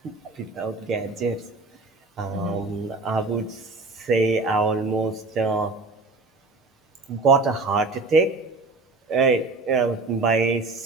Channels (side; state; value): left; quieter; 3.5 dB